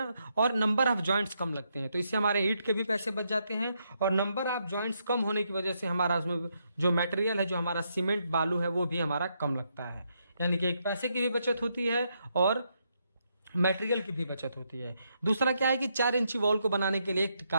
और नंबर ऑफ जॉइंट्स कम लगते हैं। तो इससे हमारे ईंट के भी पैसे बच जाते हैं और नंबर ऑफ जॉइंट्स कम होने की वजह से हमारा उसमें जो मटेरियल है, जो हमारा सीमेंट बालू है, वो भी हमारा कम लगता है। यानी कि एक पैसे की भी बचत होती है और मटेरियल की भी बचत होती है। दूसरा क्या है कि 4 इंची वॉल को बनाने के लिए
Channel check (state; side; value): inverted; both; correlation -0.79